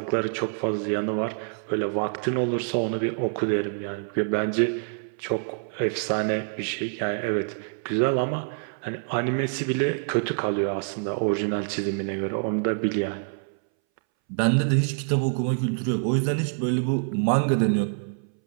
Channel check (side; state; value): left; silent; 61 dB below the other